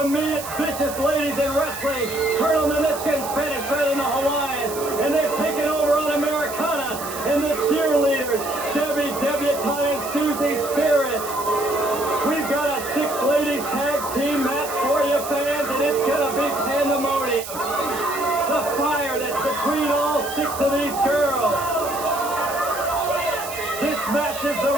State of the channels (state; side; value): noise; right; hiss, 10 dB below the sound